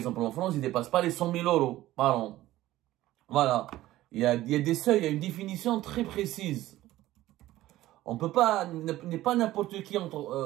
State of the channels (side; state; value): left; quieter; 15.6 dB